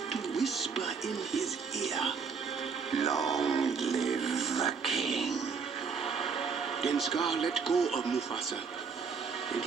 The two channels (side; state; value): left; quieter; 5.6 dB